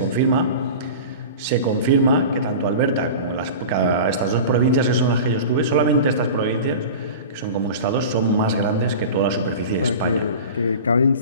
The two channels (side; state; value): both; inverted; correlation -0.34